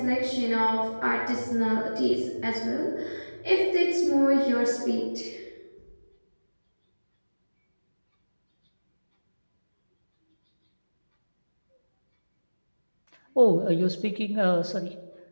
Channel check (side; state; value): both; inverted; correlation -1.00